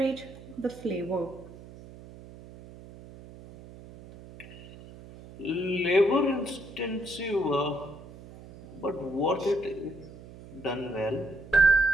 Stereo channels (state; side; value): noise; right; hum, 17 dB below the sound